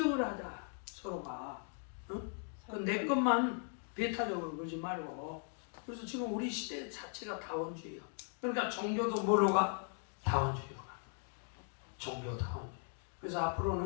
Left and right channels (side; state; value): right; silent; 52 dB below the other